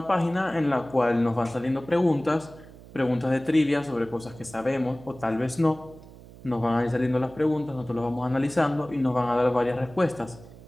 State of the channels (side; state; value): right; noise; hum, 19 dB below the sound